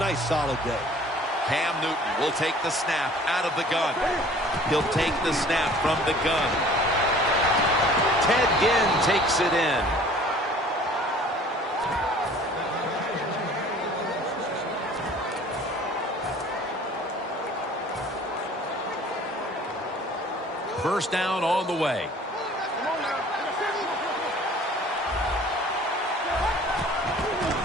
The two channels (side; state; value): both; normal; correlation 0.50